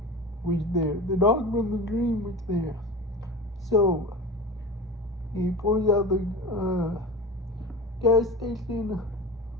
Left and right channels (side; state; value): both; normal; correlation 0.31